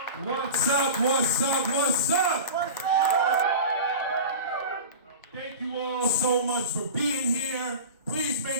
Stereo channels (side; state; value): both; inverted; correlation -0.31